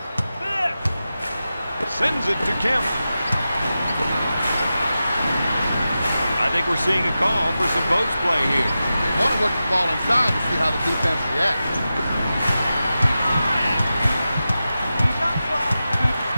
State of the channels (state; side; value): inverted; both; correlation -0.92